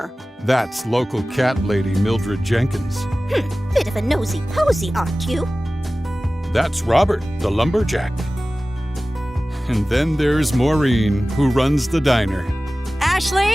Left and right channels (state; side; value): normal; both; correlation 0.97